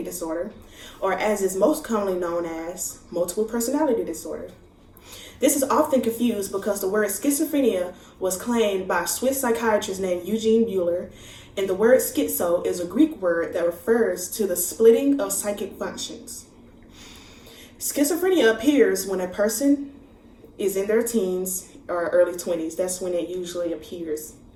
disorder, or as is most commonly known as multiple personality disorder. This is often confused because the word schizophrenia was claimed by a Swiss psychiatrist named Eugene Buehler, and the word schizo is a Greek word that refers to the splitting of psychic functions. Schizophrenia appears when a person is in their teens or early 20s. That's when it usually appears.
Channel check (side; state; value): both; identical; correlation 1.00